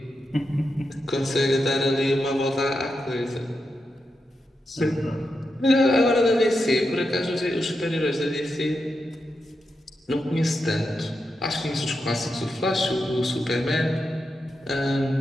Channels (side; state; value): both; normal; correlation 0.87